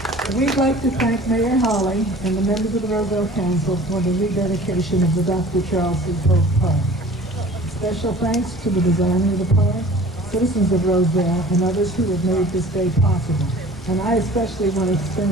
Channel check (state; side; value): normal; both; correlation 0.46